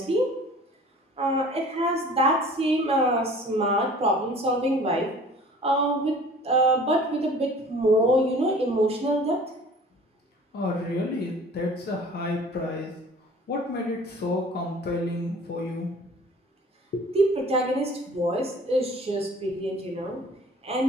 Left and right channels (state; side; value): normal; both; correlation 0.47